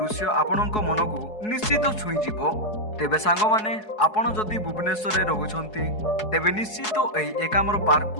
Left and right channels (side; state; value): right; late; 4.7 ms